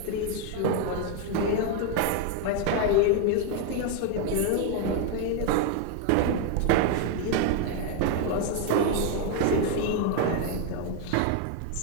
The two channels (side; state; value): both; different; correlation 0.01